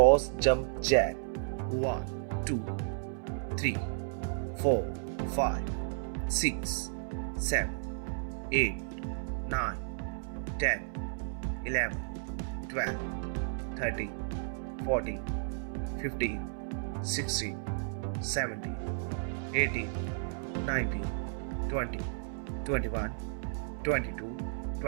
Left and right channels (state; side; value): silent; left; 56 dB below the other